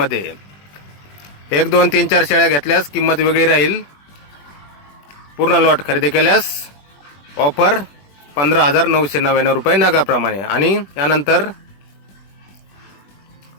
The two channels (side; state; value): right; late; 21 ms